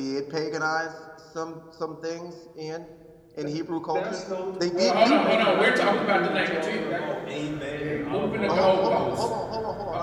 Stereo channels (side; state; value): both; identical; correlation 1.00